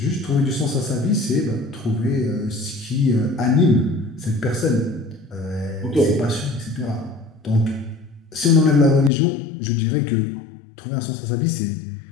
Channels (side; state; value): right; drops out; at 9.1 s